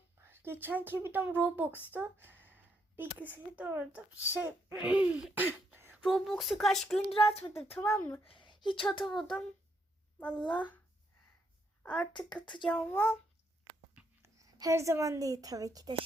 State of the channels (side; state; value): both; normal; correlation 0.76